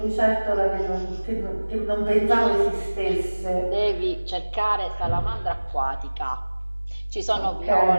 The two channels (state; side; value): inverted; both; correlation -1.00